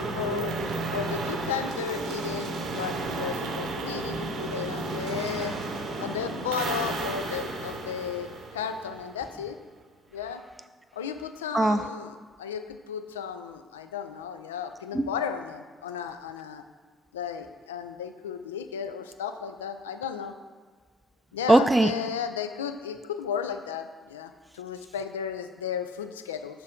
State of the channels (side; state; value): both; normal; correlation 0.45